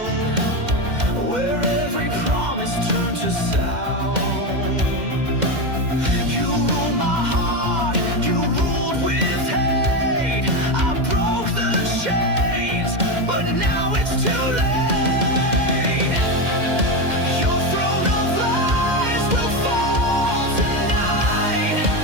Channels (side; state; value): left; late; 2.1 ms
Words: where every promise turned to sound. You ruled my heart, you ruled with hate. I broke the chains, but now it's too late.